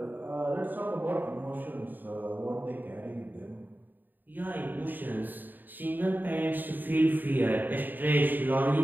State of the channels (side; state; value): left; late; 0.090 ms